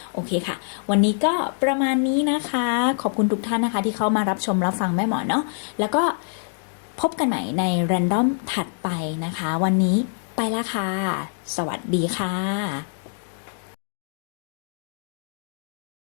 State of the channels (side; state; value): right; silent; 62 dB below the other